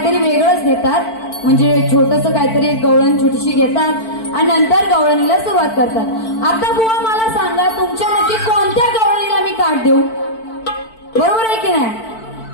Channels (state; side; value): late; right; 4.5 ms